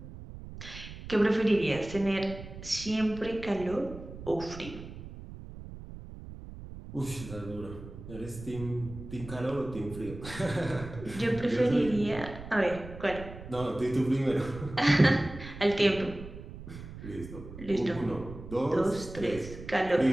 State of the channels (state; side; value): noise; right; rumble, 13 dB below the sound